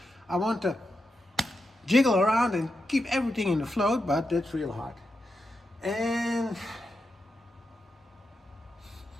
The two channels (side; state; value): both; normal; correlation 0.87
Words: I want to jiggle around and keep everything in the float, but that's real hard. And